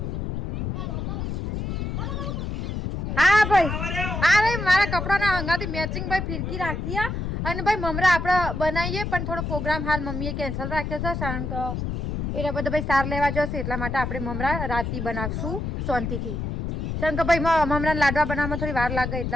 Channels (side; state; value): left; noise; rumble, 3 dB below the sound